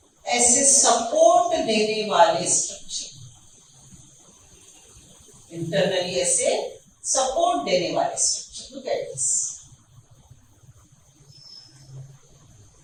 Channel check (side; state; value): both; identical; correlation 1.00